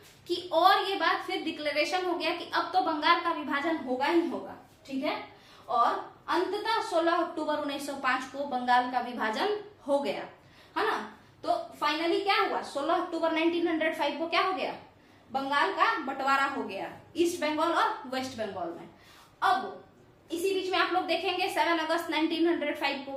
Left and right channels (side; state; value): both; identical; correlation 1.00